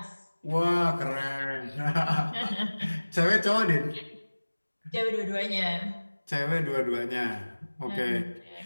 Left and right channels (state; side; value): inverted; both; correlation -1.00